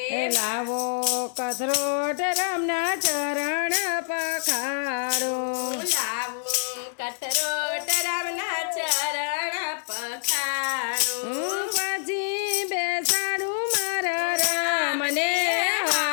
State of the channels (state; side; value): silent; right; digital silence